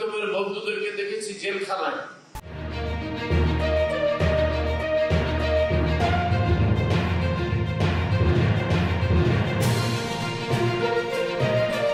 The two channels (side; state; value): both; identical; correlation 1.00